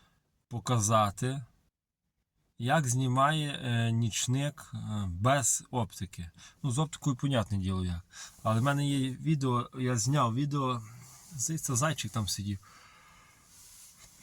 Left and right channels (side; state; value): both; identical; correlation 1.00